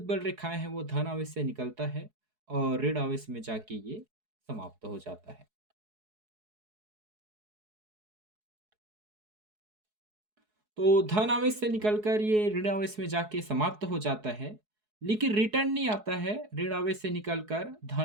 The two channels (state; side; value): late; left; 4.7 ms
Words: बल रेखाएं हैं वो धन आवेश से निकलता है और ऋण आवेश में जाके ये समाप्त हो जाता है। तो धन आवेश से निकलकर ये ऋण आवेश में जाके समाप्त हो जाता है, लेकिन रिटर्न नहीं आता है। ऋण आवेश से निकलकर